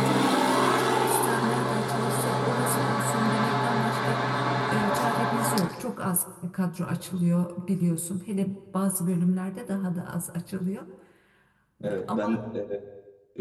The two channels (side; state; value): both; identical; correlation 1.00